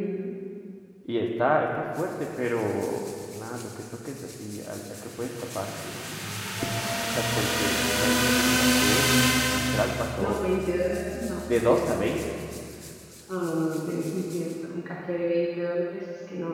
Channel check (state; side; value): identical; both; correlation 1.00